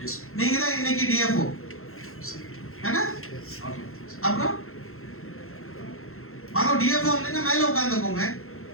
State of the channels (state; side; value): late; right; 0.62 ms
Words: நீங்க தான் இன்னைக்கு டிஎஃப்ஓ. என்ன? அப்புறம் வாங்க டிஎஃப்ஓ வந்து மேல உட்கார்ந்துக்கோங்க.